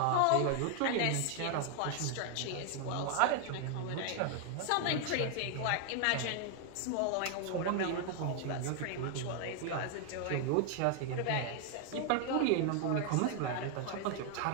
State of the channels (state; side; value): different; both; correlation 0.00